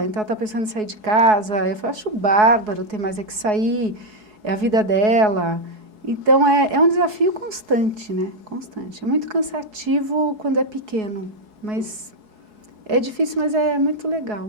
então ela está pensando em sair de casa. Eu acho bárbaro, tem mais é que sair, é a vida dela. Então, é um desafio constante, né? Constante. É muito cansativo quando é pequeno, mas é difícil, mas é muito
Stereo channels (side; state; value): left; late; 4.7 ms